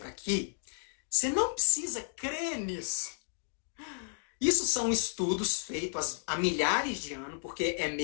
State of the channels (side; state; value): right; silent; digital silence